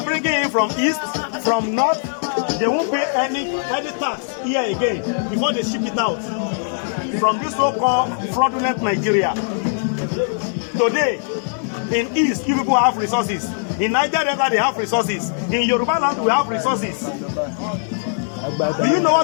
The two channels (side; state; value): right; silent; 65 dB below the other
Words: bringing in from east, from north, they won't pay any tax here again before they ship it out from this so-called fraudulent Nigeria. Today, in East, you people have resources. In Niger Delta, they have resources. In Yoruba land, we have resources. Do you know